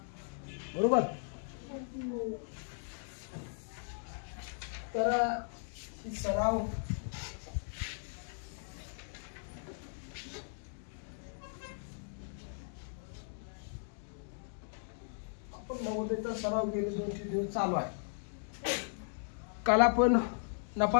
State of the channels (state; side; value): silent; right; digital silence